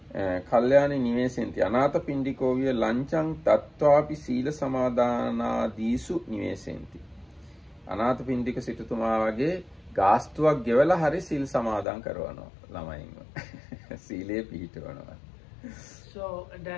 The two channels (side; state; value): right; drops out; at 11.9 s